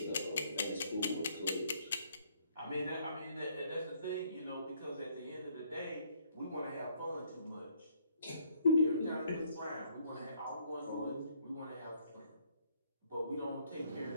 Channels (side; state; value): both; inverted; correlation -0.67